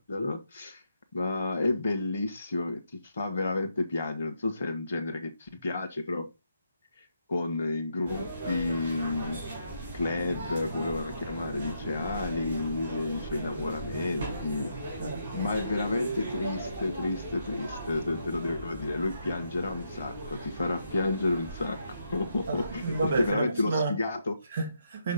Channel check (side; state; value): both; inverted; correlation -0.79